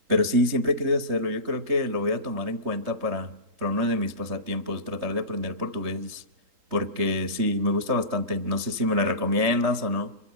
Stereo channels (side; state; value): left; late; 3.8 ms